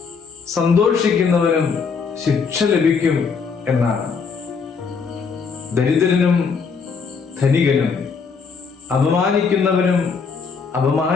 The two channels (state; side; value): quieter; right; 5.5 dB